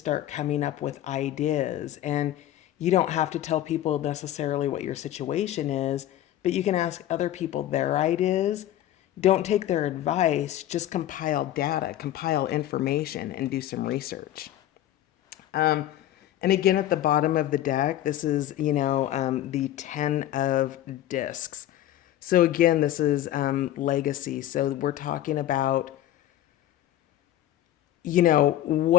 coming up with ideas. And you don't have to tell people necessarily what your situation is, but you can ask other people their ideas. Don't take their advice, just compile data, compile information, and do some research. And again, at the bottom of the deck, this is, the 10 of discs. So again, this is legacy. So we're talking about,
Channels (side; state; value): right; quieter; 12.7 dB